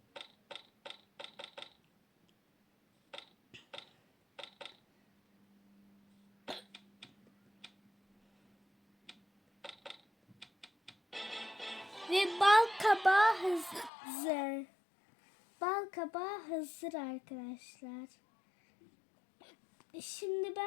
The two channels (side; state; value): right; drops out; at 13.9 s